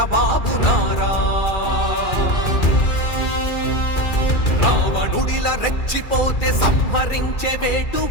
నారా. రావణుడిల రెచ్చిపోతే సంహరించే వేటు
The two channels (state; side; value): late; right; 2.4 ms